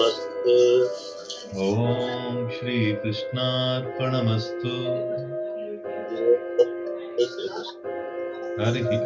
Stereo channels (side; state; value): both; identical; correlation 1.00